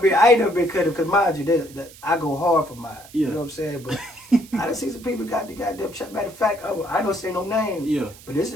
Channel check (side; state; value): right; noise; hiss, 21 dB below the sound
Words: I ain't never been cut because mind you, that I go hard for mine. Yeah. You know what I'm saying? But I done seen some people got the goddamn shot. Matter of fact, I don't say no names. Yeah. But this